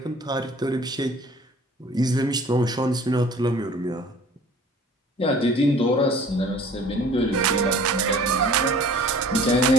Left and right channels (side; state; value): both; normal; correlation 0.49